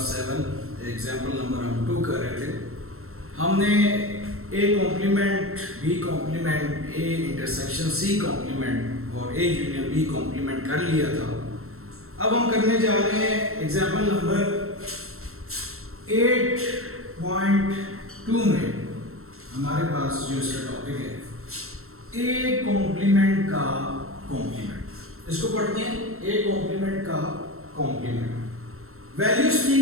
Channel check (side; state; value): left; late; 0.62 ms